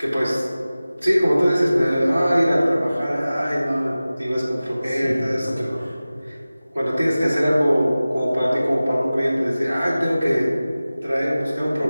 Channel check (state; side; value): inverted; both; correlation -0.97